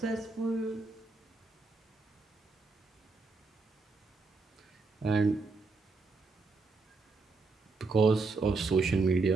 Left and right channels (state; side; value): quieter; left; 3.9 dB